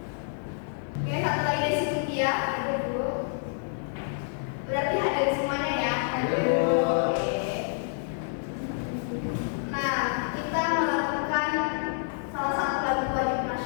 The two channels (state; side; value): silent; right; 59 dB below the other